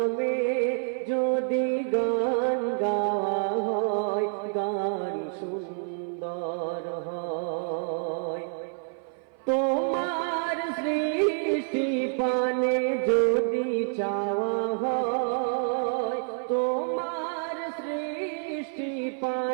যদি গান গাওয়া হয়, গান সুন্দর হয়। তোমার সৃষ্টি পানে যদি চাওয়া হয়, তোমার সৃষ্টি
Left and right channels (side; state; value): left; silent; 56 dB below the other